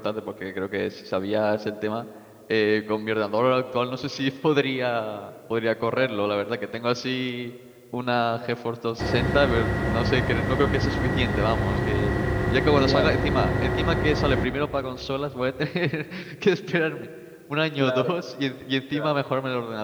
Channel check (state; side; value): identical; both; correlation 1.00